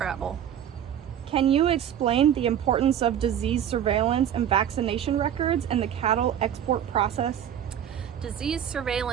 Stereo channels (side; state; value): left; quieter; 9.8 dB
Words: Can you explain the importance of disease surveillance and vaccination records in the cattle export process? Disease